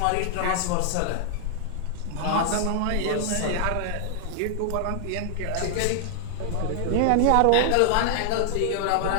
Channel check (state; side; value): different; both; correlation -0.01